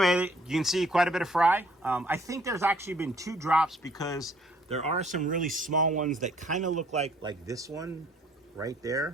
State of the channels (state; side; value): normal; both; correlation 0.60